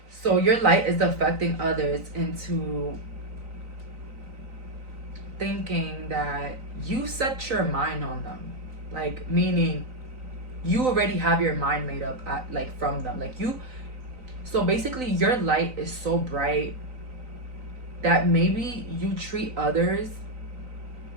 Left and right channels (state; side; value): late; left; 3.9 ms